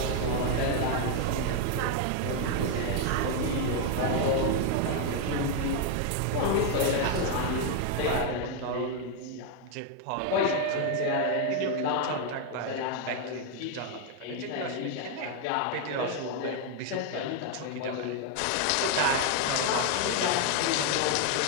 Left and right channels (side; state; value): both; different; correlation 0.00